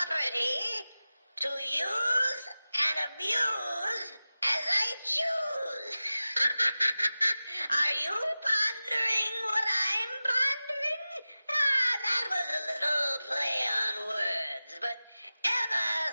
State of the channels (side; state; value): both; inverted; correlation -0.95